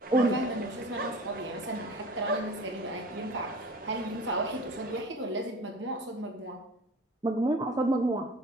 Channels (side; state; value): both; normal; correlation 0.41